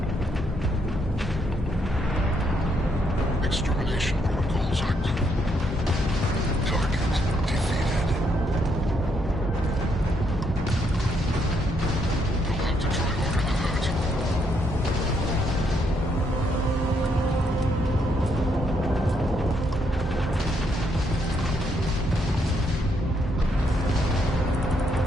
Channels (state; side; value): normal; both; correlation 0.75